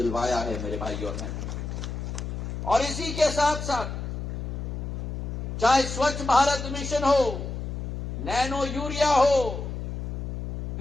है मेरे भाई और बहनों। और इसी के साथ साथ चाहे स्वच्छ भारत मिशन हो, नैनो यूरिया हो,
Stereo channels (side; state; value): left; noise; hum, 5 dB below the sound